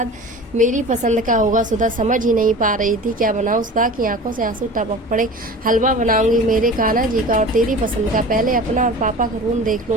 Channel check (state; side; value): normal; both; correlation 0.37